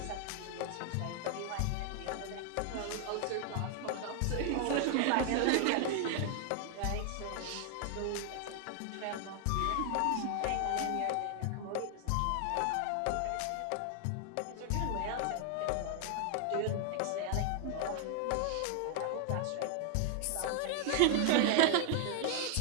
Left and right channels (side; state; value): both; different; correlation 0.00